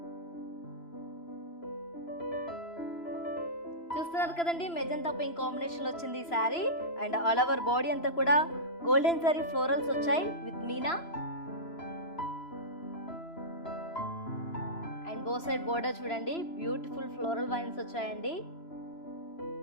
చూస్తున్నారు కదండి మెజంతా పింక్ కాంబినేషన్ లో వచ్చింది ఈ sari. And all over body అంతా కూడా గోల్డెన్ జరీ ఫ్లోరల్స్ వచ్చాయి with meena. Both side border చూడండి beautiful floral vines వచ్చాయండి.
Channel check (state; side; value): late; right; 3.0 ms